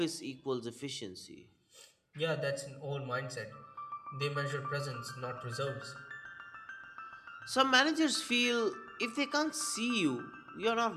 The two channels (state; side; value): identical; both; correlation 1.00